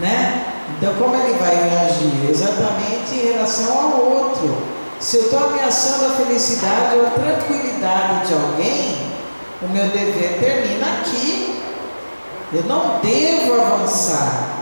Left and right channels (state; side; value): inverted; both; correlation -1.00